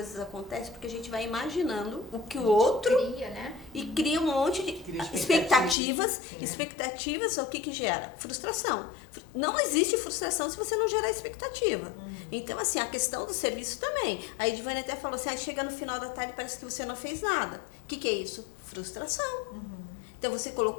acontecem porque a gente vai imaginando o que o outro Cria, né? e cria um monte de Cria expectativas. Sim. Expectativas, o que gera? Frustração. Não existe frustração se você não gerar expectativa. Então, assim, a questão do serviço também. A Edivane até falou assim, chega no final da tarde parece que você não fez nada. O que é isso? Frustração. Então, você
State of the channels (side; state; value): right; drops out; at 5.8 s